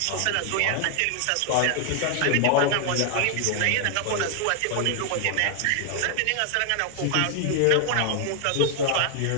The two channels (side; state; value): both; different; correlation 0.00